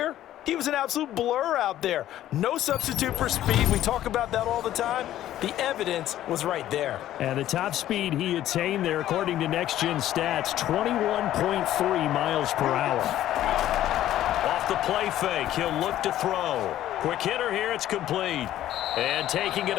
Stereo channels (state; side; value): quieter; right; 12.9 dB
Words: he was an absolute blur out there. No substitute for speed. We talk about that all the time. The evidence was right there. And the top speed he attained there, according to Next Gen Stats, 21.3 miles per hour. Off the play fake, he'll look to throw. Quick hitter here, it's complete. And taking it